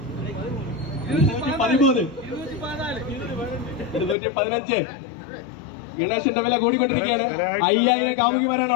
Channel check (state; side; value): drops out; right; at 4.2 s